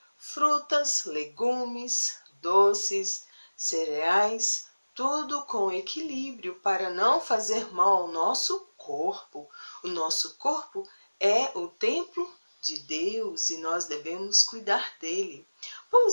frutas, legumes, doces, cereais, tudo com equilíbrio para não fazer mal ao nosso corpo. O nosso corpo é o templo de Deus e nós devemos cuidar dele.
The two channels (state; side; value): inverted; both; correlation -1.00